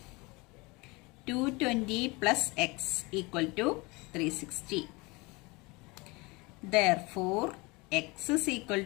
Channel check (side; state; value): right; quieter; 25.6 dB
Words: plus x equal to 360. Therefore, x is equal